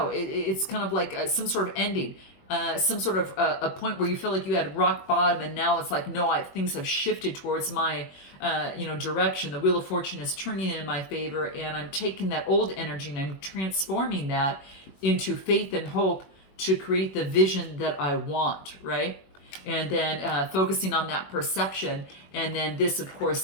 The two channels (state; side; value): late; right; 21 ms